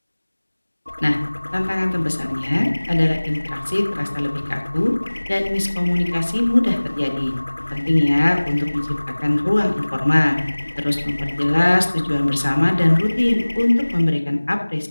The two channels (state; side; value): inverted; both; correlation -1.00